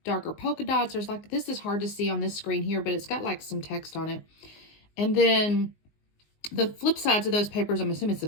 darker polka dots. There's like, this is hard to see on this screen here, but it's got like some text on it. And then the flip sides of those papers, I'm assuming it's the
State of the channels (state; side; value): late; right; 19 ms